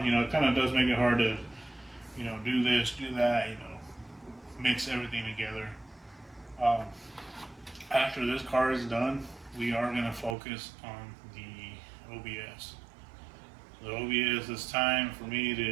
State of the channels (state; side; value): drops out; left; at 10.4 s